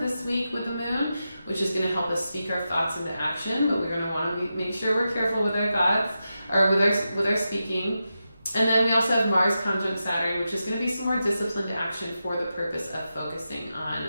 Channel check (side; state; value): both; inverted; correlation -0.89